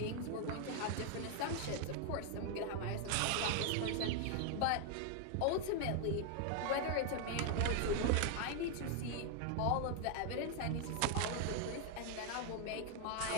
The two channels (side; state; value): both; different; correlation 0.01